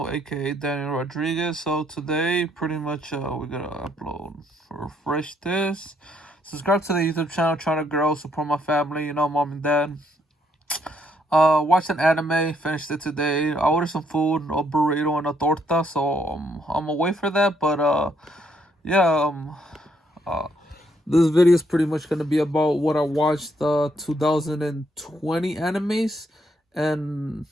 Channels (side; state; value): both; normal; correlation 0.72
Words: aka Daniel Rodriguez. So today, pretty much, we're gonna upload, refresh this, subscribe to the YouTube channel, trying to grow, support my family, mom and dad. Watched an anime, finished it today. I ordered some food, a burrito and a torta, so I'm away for that. But yeah, uh, this video is pretty much gonna be about what I watched 2020 animes, and